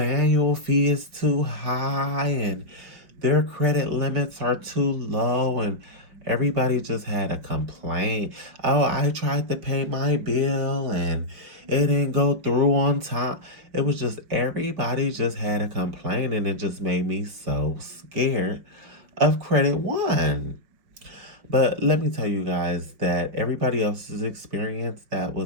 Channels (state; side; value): late; left; 5.5 ms